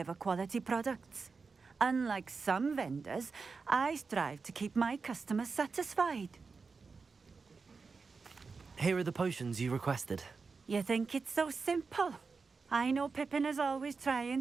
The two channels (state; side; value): quieter; left; 4.7 dB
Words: quality products. Unlike some vendors, I strive to keep my customers satisfied. Here are the potions you requested. You think it's so simple? I know Pippin is always trying